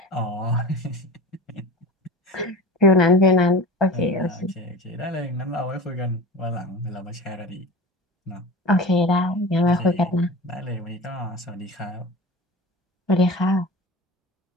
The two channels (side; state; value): both; normal; correlation 0.33